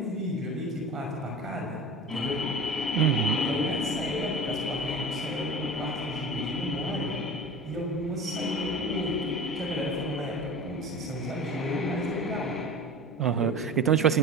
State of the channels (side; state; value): both; normal; correlation 0.34